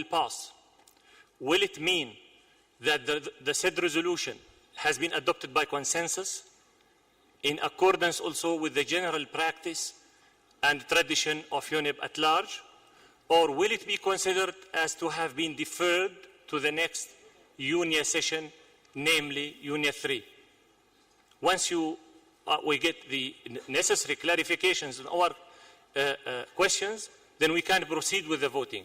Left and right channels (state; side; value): identical; both; correlation 1.00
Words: pass, will it mean that the said resolution has been adopted by consensus in accordance also with the general practice and tradition of UNEP at large, or will it be considered as to have been deferred to the next UNIA session, namely UNIA 3? Once we get the necessary clarifications on our questions, then we can proceed with the voting.